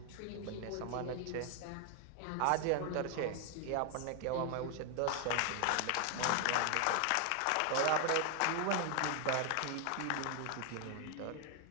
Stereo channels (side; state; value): both; different; correlation 0.01